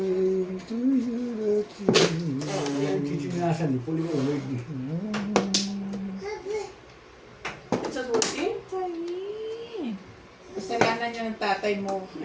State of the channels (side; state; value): both; identical; correlation 1.00